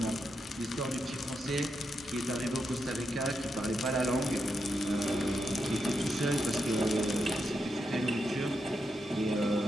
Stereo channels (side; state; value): both; normal; correlation 0.84